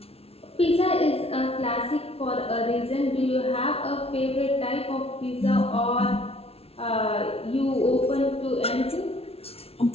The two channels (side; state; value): right; late; 0.29 ms